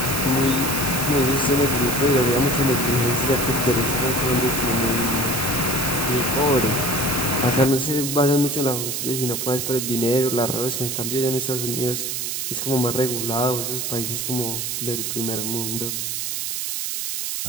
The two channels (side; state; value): right; noise; hiss, 2 dB below the sound